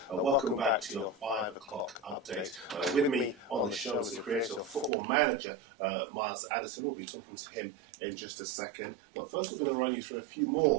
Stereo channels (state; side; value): drops out; left; at 4.9 s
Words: Welcome back to your 5 o'clock update. With me on the show is the creator of Football Manager, Miles Jacobson. We'll be talking to him in just a second. But first we're going to run you through a few